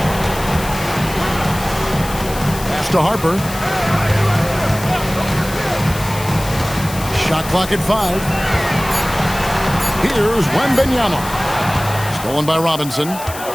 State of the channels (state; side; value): noise; left; hiss, 12 dB below the sound